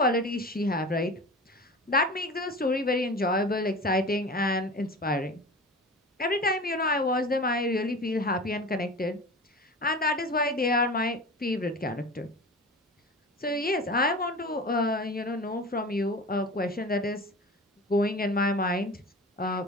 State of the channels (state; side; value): normal; both; correlation 0.34